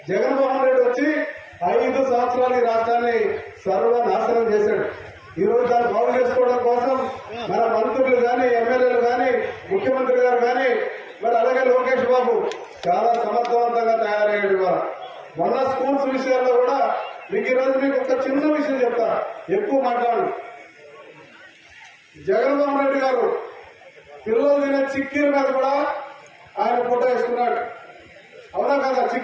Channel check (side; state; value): both; identical; correlation 1.00